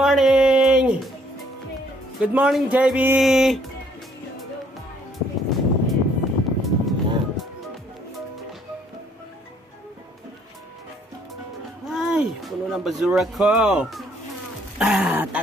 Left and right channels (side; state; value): both; normal; correlation 0.64